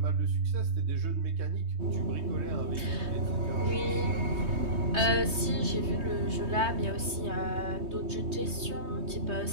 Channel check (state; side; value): late; left; 3.2 ms